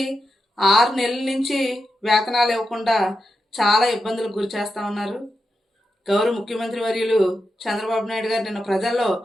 6 నెలల నుంచి వేతనాలు ఇవ్వకుండా చాలా ఇబ్బందులకు గురి చేస్తూ ఉన్నారు. గౌరవ ముఖ్యమంత్రి వర్యులు చంద్రబాబు నాయుడు గారు నిన్న ప్రజల్లో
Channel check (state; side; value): normal; both; correlation 0.88